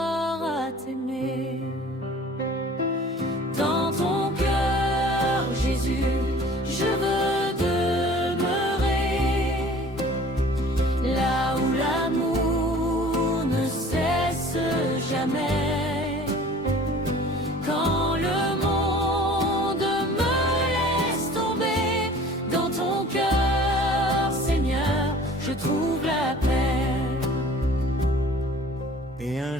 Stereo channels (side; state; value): both; normal; correlation 0.47